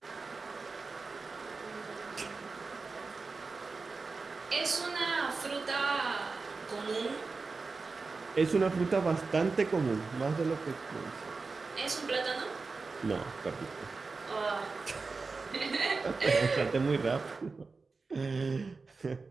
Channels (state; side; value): quieter; left; 4.2 dB